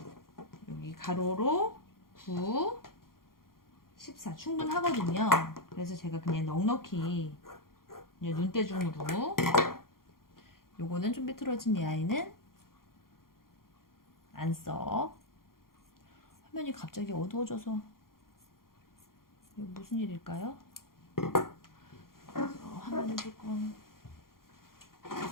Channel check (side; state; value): right; late; 0.92 ms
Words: 여기 가로로 9, 14 충분하거든요. 그래서 제가 그냥 넉넉히 눈대중으로, 요거는 좀 삐뚤어진 이 아이는 안 써. 화면이 갑자기 어두워져서 이거 무슨 일일까요? 화면을 조금